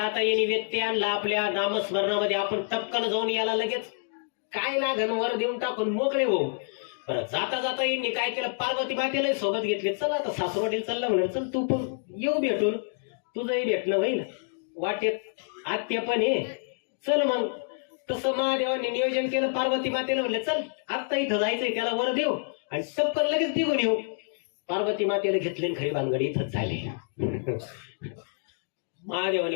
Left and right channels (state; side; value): silent; right; digital silence